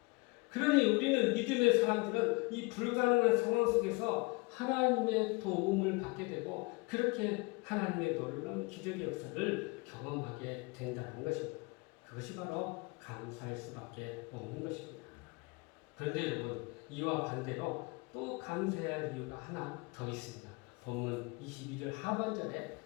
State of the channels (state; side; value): quieter; right; 27.5 dB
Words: 그러니 우리는 믿음의 사람들은 이 불가능한 상황 속에서 하나님의 도움을 받게 되고 그렇게 하나님의 놀라운 기적의 역사를 경험하게 된다는 것입니다. 그것이 바로 감사할 수밖에 없는 것입니다. 그런데 여러분, 이와 반대로 또 감사해야 할 이유가 하나 더 있습니다. 본문 22절 하반절에